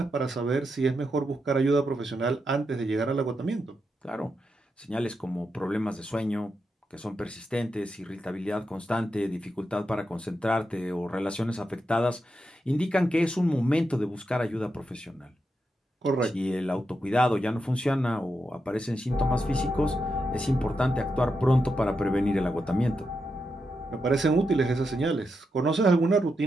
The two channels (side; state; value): both; normal; correlation 0.86